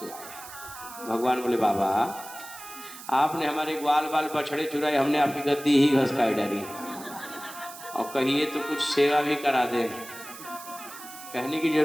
भगवान बोले बाबा आपने हमारे ग्वाल बाल बछड़े चुराए, हमने आपकी गद्दी ही घसकाई डाली, और कहिए तो कुछ सेवा भी करा दे, कहने की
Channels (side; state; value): right; noise; hiss, 14 dB below the sound